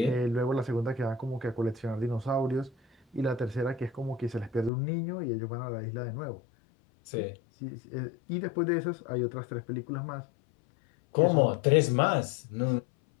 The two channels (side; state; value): right; drops out; at 4.7 s